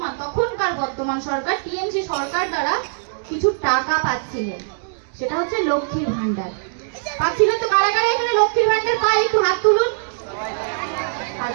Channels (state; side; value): silent; left; digital silence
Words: তখনকার বর্তমান সরকার টিএমসি সরকার দ্বারা কিছু টাকা পাচ্ছিলেন, সেটা হচ্ছে লক্ষ্মীর ভান্ডার পাচ্ছিলেন। তো কারা কারা এখানে লক্ষ্মীর ভান্ডার পায় একটু হাত তুলুন।